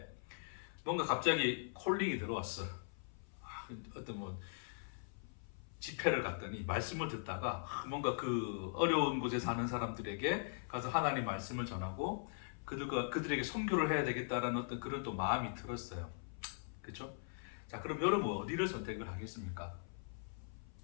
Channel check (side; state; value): right; silent; 51 dB below the other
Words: 뭔가 갑자기 콜링이 들어왔어. 어떤 뭐 집회를 갔더니 말씀을 듣다가 뭔가 그 어려운 곳에 사는 사람들에게 가서 하나님 말씀을 전하고 그들에게 선교를 해야 되겠다라는 어떤 그런 또 마음이 들었어요. 그렇죠? 자, 그럼 여러분 어디를 선택을 하겠습니까?